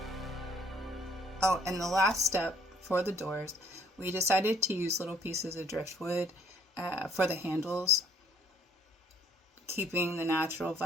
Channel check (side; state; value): both; normal; correlation 0.61